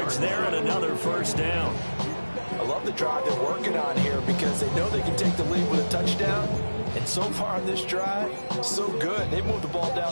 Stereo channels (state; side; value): inverted; both; correlation -1.00